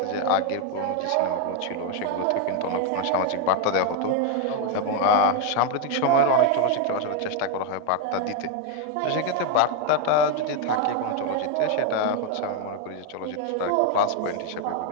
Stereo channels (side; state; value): both; different; correlation 0.01